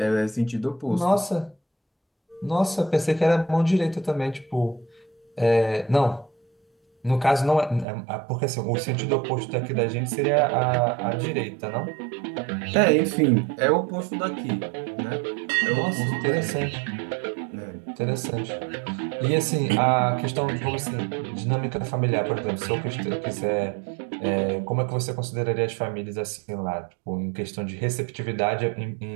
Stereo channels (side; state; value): left; drops out; at 7.9 s